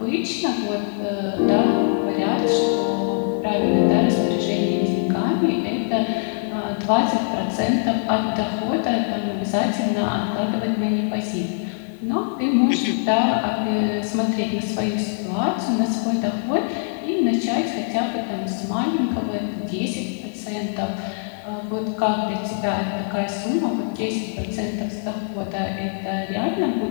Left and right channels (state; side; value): silent; right; 55 dB below the other